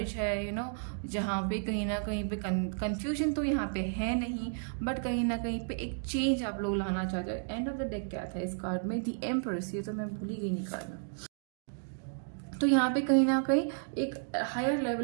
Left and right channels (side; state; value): left; silent; digital silence